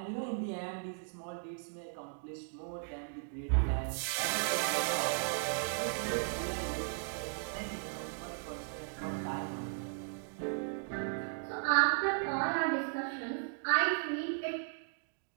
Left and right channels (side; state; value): left; silent; digital silence